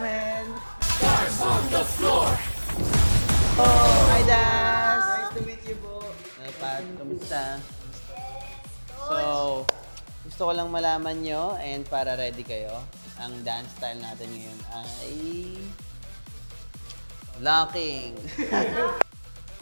Oh! Hi, Dance! Nice to meet you po! Pat, kamusta? So, gusto ko lang malaman nyo and para ready kayo, ang dance style natin ngayon ay locking.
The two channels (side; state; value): both; inverted; correlation -1.00